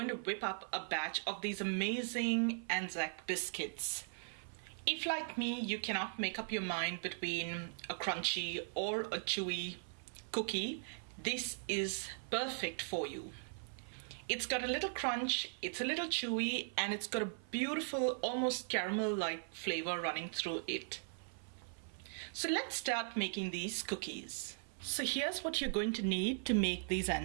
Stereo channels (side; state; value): left; silent; 52 dB below the other